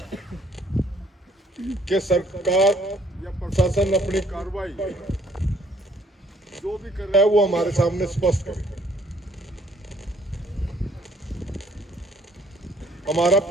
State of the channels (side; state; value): both; normal; correlation 0.63